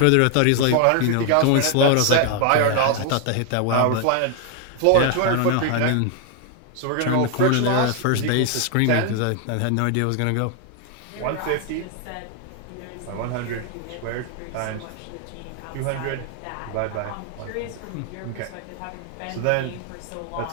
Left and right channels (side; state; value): both; different; correlation 0.00